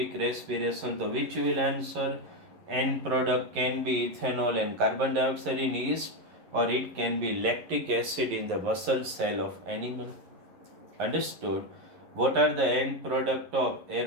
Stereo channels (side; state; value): left; late; 11 ms